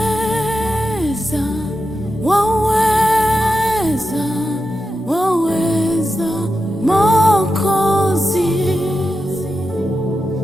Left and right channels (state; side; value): normal; both; correlation 0.89